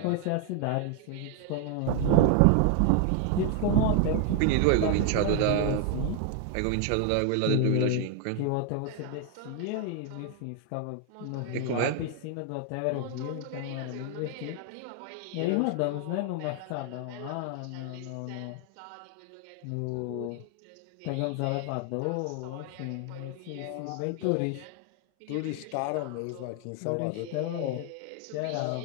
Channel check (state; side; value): different; both; correlation 0.00